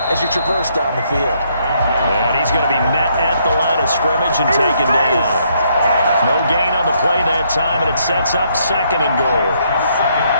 as you traverse down the field. And he's going to be met at the line of scrimmage and taken down. No gain on the play that time, and it sets up 2nd and goal.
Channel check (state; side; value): inverted; both; correlation -0.71